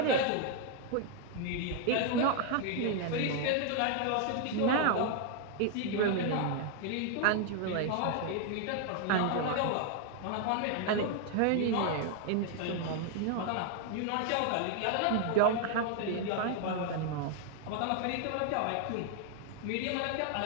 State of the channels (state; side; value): different; both; correlation 0.00